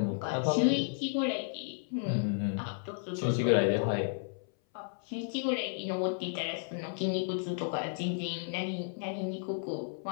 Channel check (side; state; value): right; silent; 56 dB below the other